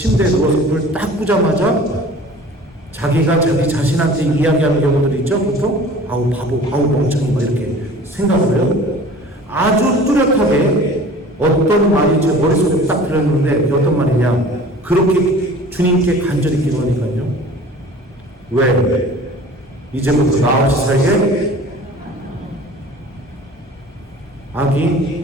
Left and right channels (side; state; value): both; normal; correlation 0.44